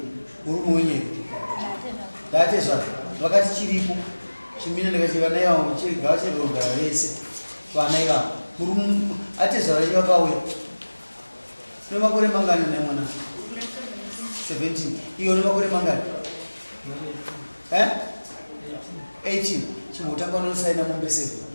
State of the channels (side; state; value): both; inverted; correlation -1.00